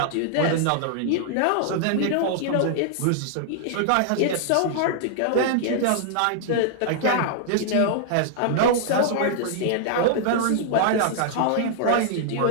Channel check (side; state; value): both; different; correlation -0.01